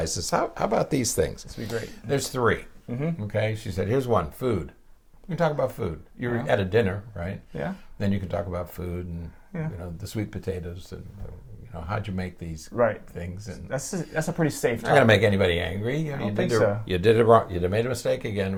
how about these things? This would be great. There's 3. Okay, she said, here's one, food. You can talk about food. You're at a dinner, right? Then you can talk about food and the sweet potatoes and how'd you make these things. And that's a pretty safe. Not gonna make anybody angry. You did it wrong. You made a mistake again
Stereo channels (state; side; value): identical; both; correlation 1.00